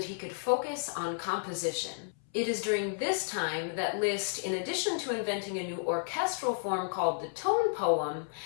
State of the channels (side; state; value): right; silent; 56 dB below the other